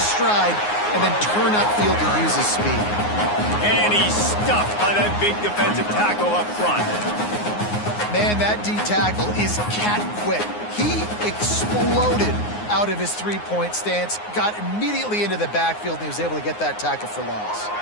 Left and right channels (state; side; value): late; right; 9.6 ms